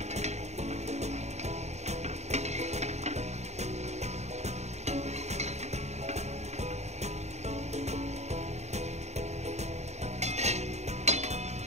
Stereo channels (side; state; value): left; late; 0.32 ms